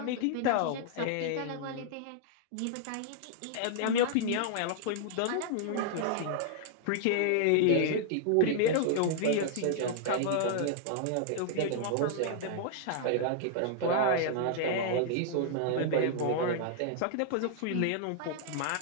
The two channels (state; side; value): different; both; correlation -0.01